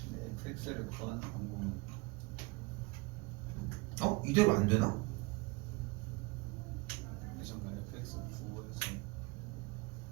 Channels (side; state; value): left; quieter; 25.7 dB